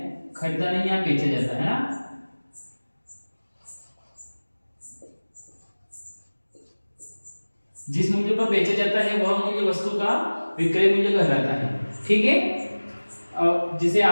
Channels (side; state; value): both; inverted; correlation -1.00